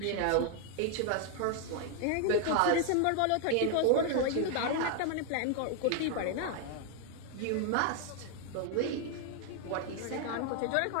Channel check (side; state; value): both; different; correlation 0.00